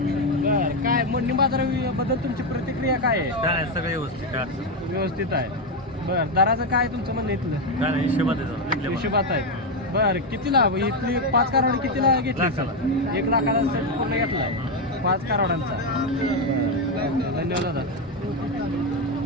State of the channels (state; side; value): normal; both; correlation 0.07